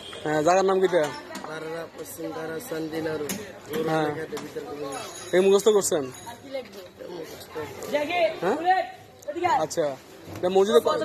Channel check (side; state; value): both; identical; correlation 1.00